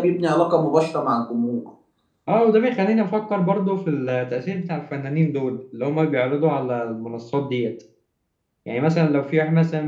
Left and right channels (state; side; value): identical; both; correlation 1.00